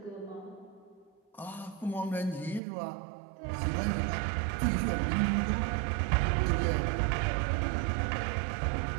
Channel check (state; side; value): drops out; left; at 2.6 s